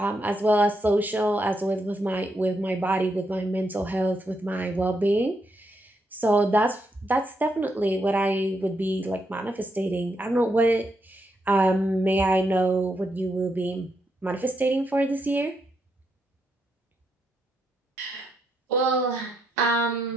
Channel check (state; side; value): normal; both; correlation 0.80